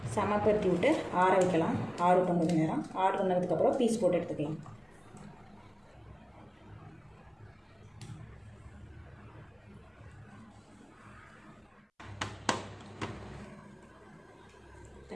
சமப்படுத்தி விட்டு ஆற வைக்கலாம். ஆறட்டும் கொஞ்சம் நேரம். ஆறு பண்ணதுக்கப்புறம் பீஸ் போட்டு எடுத்துக்கலாம்.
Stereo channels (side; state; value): both; identical; correlation 1.00